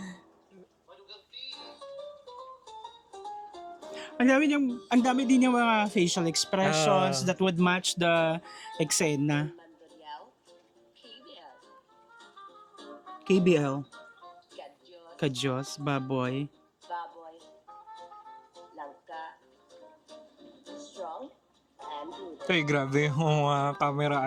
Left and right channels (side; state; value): both; identical; correlation 1.00